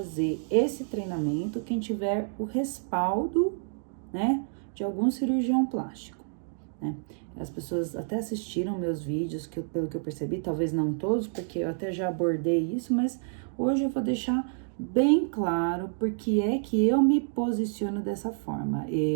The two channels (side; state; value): left; silent; digital silence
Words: esse treinamento quem tiver o respaldo, né, de algum cirurgião plástico, né? As pessoas até assistiram meus vídeos, pelo que eu percebi, talvez não todos, porque eu até já abordei isso, mas hoje eu vou deixar bem claro porque é que eu me posiciono dessa forma.